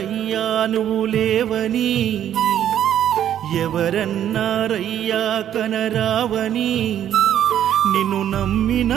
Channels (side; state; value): left; quieter; 10.6 dB